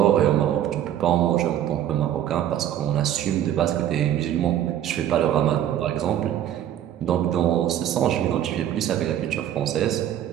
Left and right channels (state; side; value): quieter; left; 11.1 dB